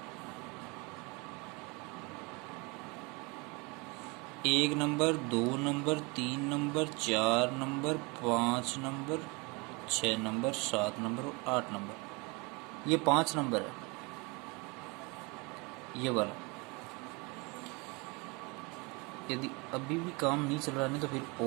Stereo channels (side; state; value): left; quieter; 28.1 dB